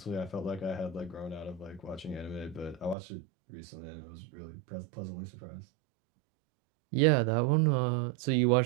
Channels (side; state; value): left; drops out; at 3.0 s